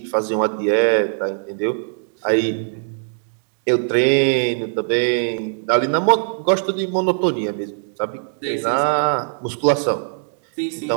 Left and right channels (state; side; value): silent; left; digital silence